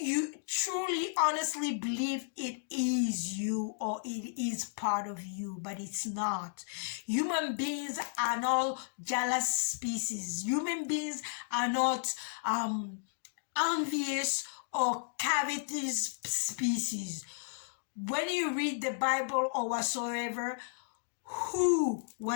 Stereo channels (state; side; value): silent; right; digital silence